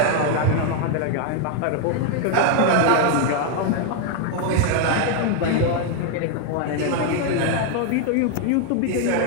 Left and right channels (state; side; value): different; both; correlation 0.01